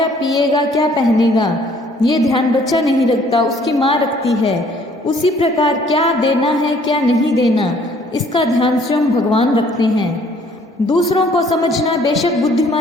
पिएगा, क्या पहनेगा, ये ध्यान बच्चा नहीं रखता, उसकी माँ रखती है। उसी प्रकार क्या देना है क्या नहीं देना, इसका ध्यान स्वयं भगवान रखते हैं। दूसरों को समझना बेशक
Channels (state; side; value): normal; both; correlation 0.59